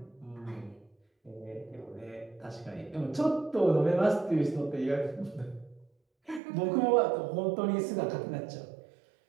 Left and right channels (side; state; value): left; drops out; at 6.4 s